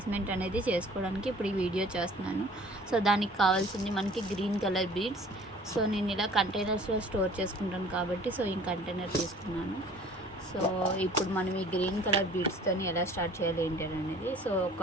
అనేది చేసుకోవడానికి ఇప్పుడు ఈ వీడియో చేస్తున్నాను. సో దానికి కావాల్సింది మనకి గ్రీన్ కలర్ బీడ్స్. సో నేను ఇలా కంటైనర్స్లో స్టోర్ చేసుకుంటాను కాబట్టి సో ఈ కంటైనర్ తీసుకున్నాను. సో ఇప్పుడు మనం ఈ గ్రీన్ కలర్ బీడ్స్తో ఎలా స్టార్ట్ చేయాలి ఏంటి అనేది. సో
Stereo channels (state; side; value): normal; both; correlation 0.50